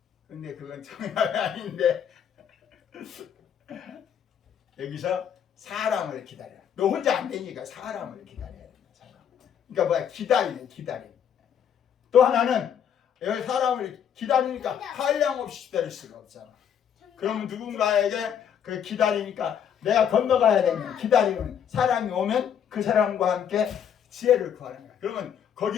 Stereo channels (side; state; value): right; quieter; 8.6 dB